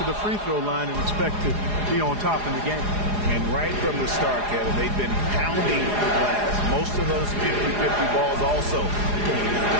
the free throw line and expect to be on top in the game. And right from the start, Kevin, they've been pounding the glass. Most of those 50-50 balls also going to the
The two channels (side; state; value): left; late; 4.9 ms